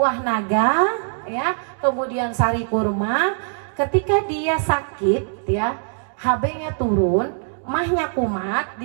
naga, ya, kemudian sari kurma. Ketika dia sakit, ya, HB-nya turun, mahnya kumat,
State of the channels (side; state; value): left; silent; digital silence